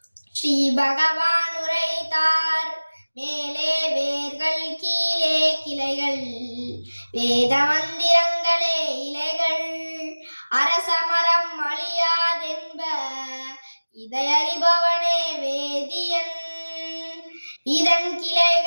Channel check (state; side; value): inverted; both; correlation -1.00